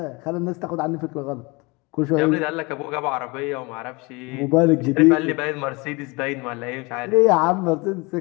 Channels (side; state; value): right; quieter; 26.3 dB